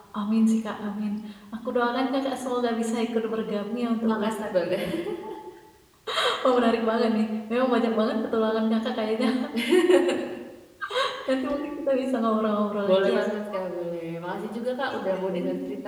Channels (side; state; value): both; identical; correlation 1.00